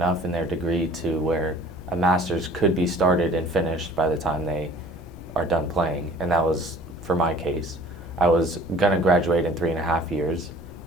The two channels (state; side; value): noise; left; rumble, 19 dB below the sound